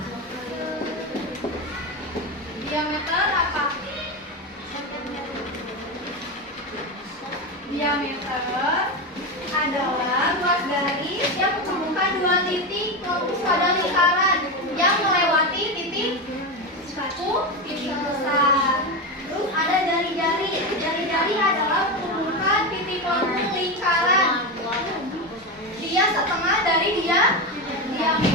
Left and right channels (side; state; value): both; normal; correlation 0.16